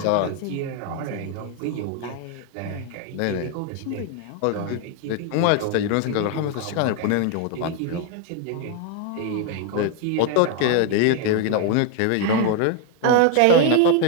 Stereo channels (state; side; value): different; both; correlation 0.00